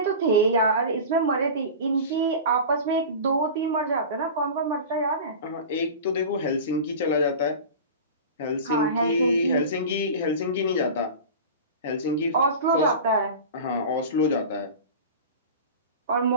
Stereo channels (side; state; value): both; inverted; correlation -0.32